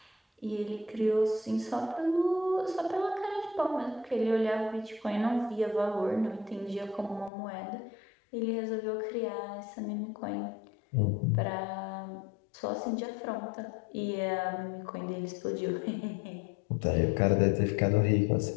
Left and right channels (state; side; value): drops out; right; at 7.3 s